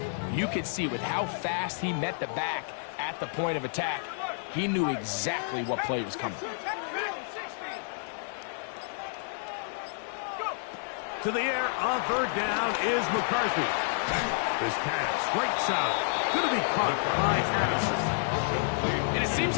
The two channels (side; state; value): right; silent; digital silence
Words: you could see with how fast he met the back at the point of attack, he knew exactly what play was coming. To the air on 3rd down is McCarthy. This pass, right side, going to be caught by Addison. And it seems